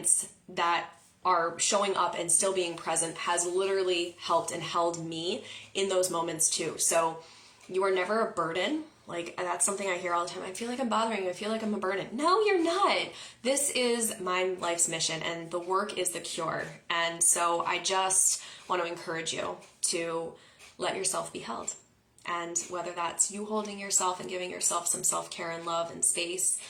that are showing up and still being present has literally helped and held me in those moments too. So you are never a burden. Like, that's something I hear all the time. I feel like I'm bothering you. I feel like I'm a burden. No, you're not. This is my life's mission, and the work is the cure. And so I just want to encourage you to let yourself be held. And whether that's you holding yourself and giving yourself some self-care and love and space,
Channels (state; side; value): identical; both; correlation 1.00